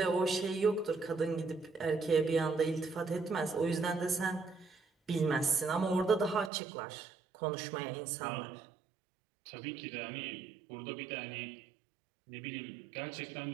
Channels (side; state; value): left; drops out; at 6.5 s